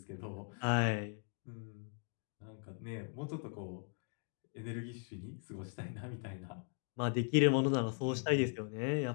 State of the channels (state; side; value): silent; right; 52 dB below the other